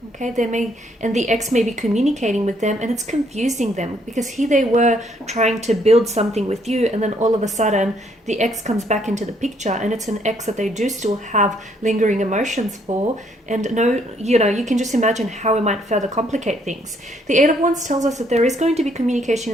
Okay, and the ex may be communicating with them, and it's confusing them because here they were trying to build something with you, and then all of a sudden the ex comes back into the picture, and it's an ex that they do still have lingering emotions for. And you can just imagine how it might further complicate things. The Eight of Wands tells us that there is going to be communication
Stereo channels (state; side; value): normal; both; correlation 0.69